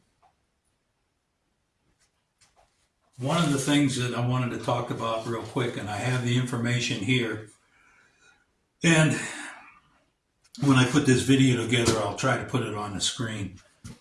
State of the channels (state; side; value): identical; both; correlation 1.00